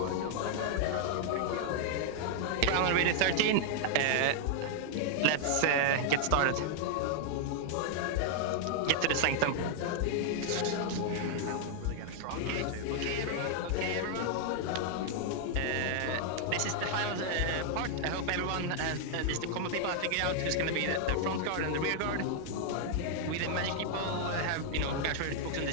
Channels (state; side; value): different; both; correlation 0.00